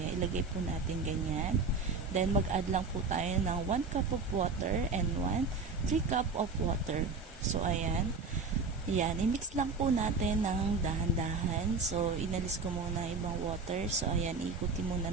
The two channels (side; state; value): left; quieter; 4.4 dB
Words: ilagay po natin ganyan. Then, mag-add lang po tayo ng 1 cup of water and 3 cup of water. So, ayan. Yan, i-mix lang po natin ng dahan-dahan. So, inalis ko muna ibang water. So, ayan, ikutin muna